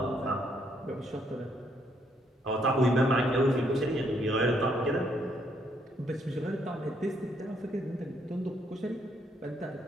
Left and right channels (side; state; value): both; normal; correlation 0.72